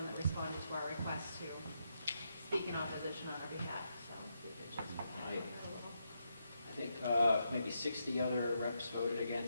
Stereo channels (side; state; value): both; inverted; correlation -0.82